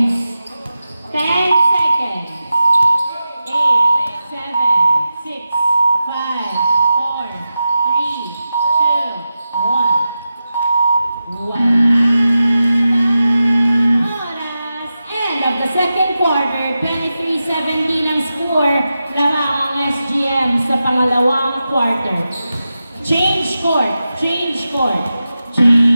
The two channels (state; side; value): inverted; both; correlation -0.92